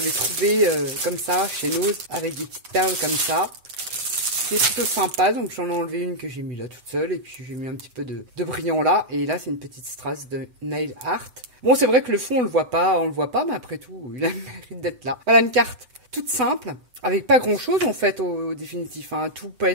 trouvés comme ça, chez Nose, avec des petites perles comme ça. C'est plutôt sympa, donc j'en ai enlevé une que j'ai mis là toute seule, et puis j'ai mis un petit peu de brillant là, et là c'est une petite strass de Nail Art. Bon, c'est vrai que le fond on le voit pas, mais après tout, il a le mérite d'être là. Voilà une carte toute simple, avec pas grand chose en fait au définitif, hein. Tout peut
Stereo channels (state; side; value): late; left; 8.0 ms